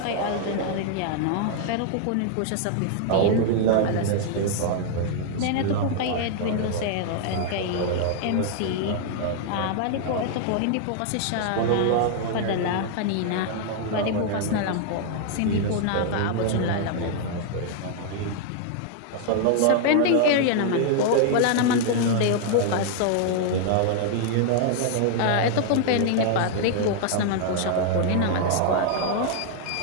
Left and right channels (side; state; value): both; different; correlation 0.00